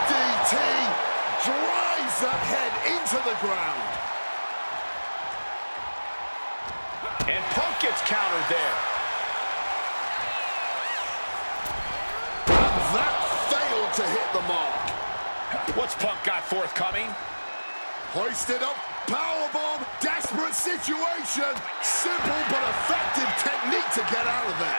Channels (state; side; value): inverted; both; correlation -1.00